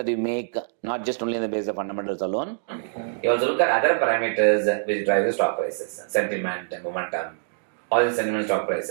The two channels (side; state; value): left; silent; digital silence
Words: you make, not just only on the basis of fundamentals alone. You also look at other parameters which drive the stock prices, sentiment, momentum, all the sentiment, stock